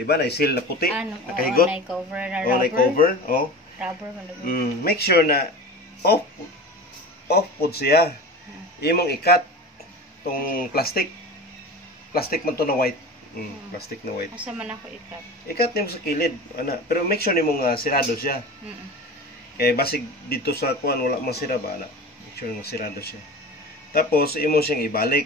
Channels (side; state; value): both; normal; correlation 0.33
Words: ba? Na seal na puti, nakahigot. Nay cover na rubber. Nay cover, oh. Rubber man. Make sure na off pud siya. Imong ikat tong plastic. Plastic man to na white. Plastic na white. Asa man ako ikat? Ikat nimo sa kilid, ana. Pero make sure nimo nga sirado siya. Kay basig dito sa kuan wala man sira ba ana. Make sure nga sirado siya. Tapos imo siyang